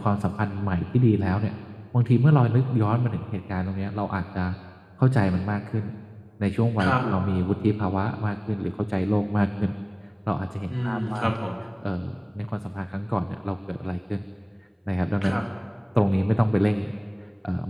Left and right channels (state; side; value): identical; both; correlation 1.00